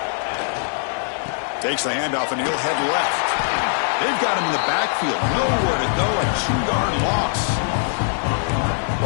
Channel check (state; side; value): silent; right; digital silence